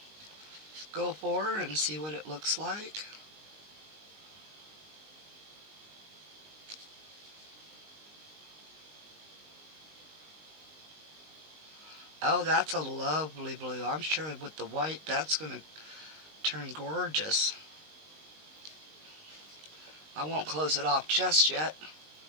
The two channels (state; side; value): late; left; 19 ms